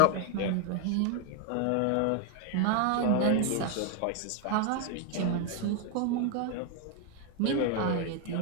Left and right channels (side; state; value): both; different; correlation 0.01